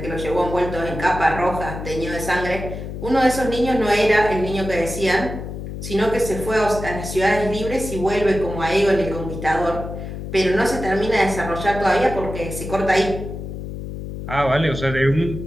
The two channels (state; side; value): noise; left; hum, 8 dB below the sound